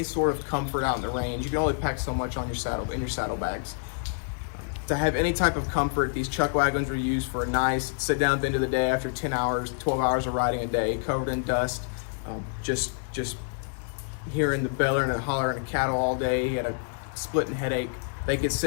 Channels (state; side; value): silent; right; digital silence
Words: sort of comfort out in the range, you can only pack so much on your saddlebags. To have any type of comfort, these chuck wagons were used for a nice sit down at the end of the day after 10 hours, 12 hours of riding a day, covered in dust, just hearing the bellowing and hollering of cattle all day. He had a splitting headache. They could